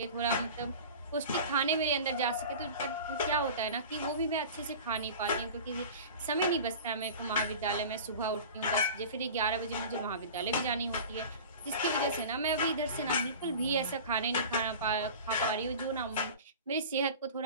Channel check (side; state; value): both; inverted; correlation -0.36